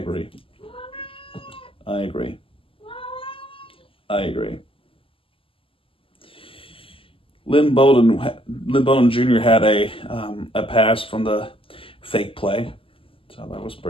Lynn Bowden Jr. had a pass from the fake play, so that was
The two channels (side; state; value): right; late; 0.26 ms